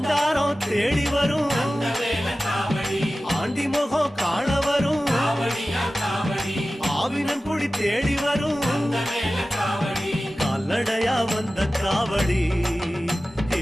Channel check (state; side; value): normal; both; correlation 0.96